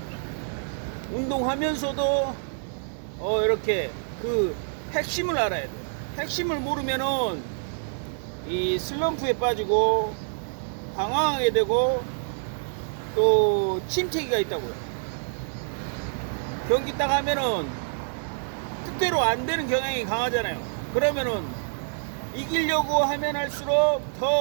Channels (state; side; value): silent; left; 60 dB below the other